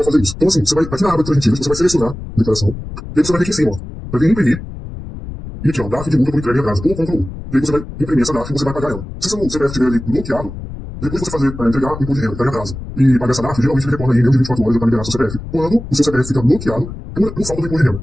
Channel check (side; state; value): left; noise; rumble, 10 dB below the sound